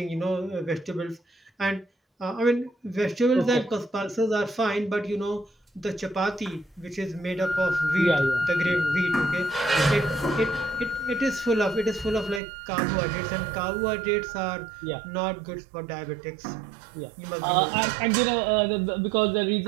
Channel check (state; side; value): drops out; left; at 12.4 s